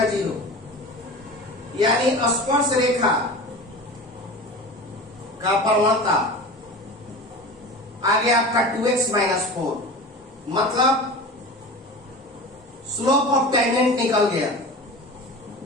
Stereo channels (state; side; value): normal; both; correlation 0.33